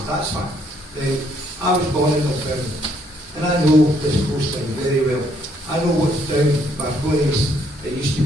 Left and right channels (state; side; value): normal; both; correlation 0.68